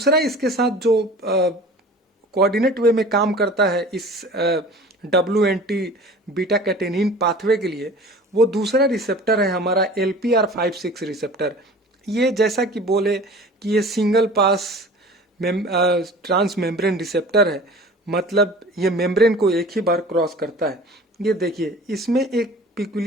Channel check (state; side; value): normal; both; correlation 0.43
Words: इसके साथ जो कोऑर्डिनेट वे में काम करता है इस WNT बीटा कैटेनिन पाथवे के लिए, वो दूसरा रिसेप्टर है हमारा LPR56 रिसेप्टर। ये जैसा कि बोले कि ये single pass transmembrane receptor है, मतलब ये मेम्ब्रेन को एक ही बार क्रॉस करता है। ये देखिए, इसमें एक